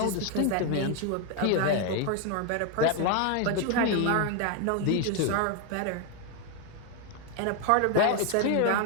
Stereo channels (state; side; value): different; both; correlation 0.01